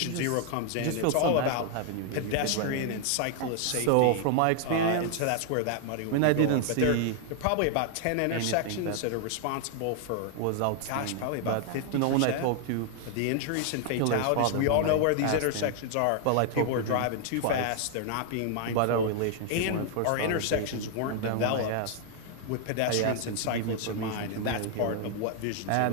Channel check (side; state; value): both; different; correlation 0.00